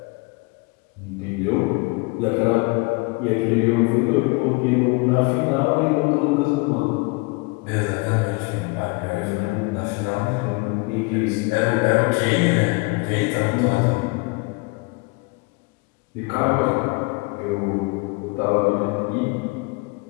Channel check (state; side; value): quieter; right; 28.4 dB